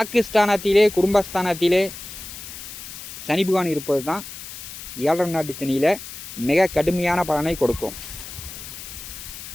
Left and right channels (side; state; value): left; noise; hiss, 12 dB below the sound